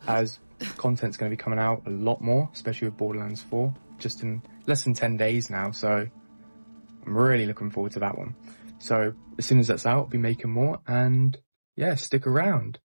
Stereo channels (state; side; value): inverted; both; correlation -1.00